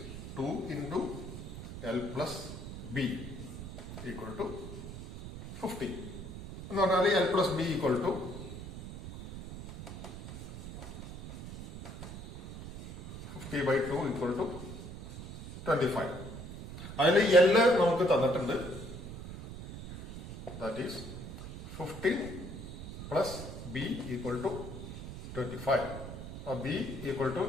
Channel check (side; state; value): right; noise; rumble, 11 dB below the sound